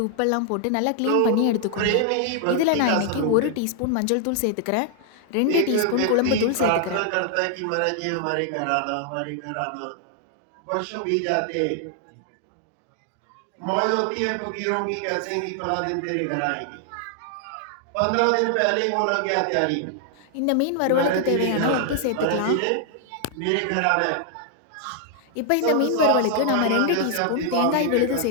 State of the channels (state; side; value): different; both; correlation 0.00